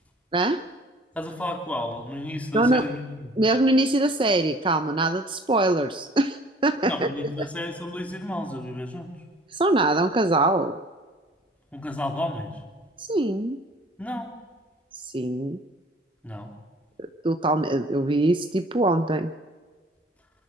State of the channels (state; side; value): normal; both; correlation 0.51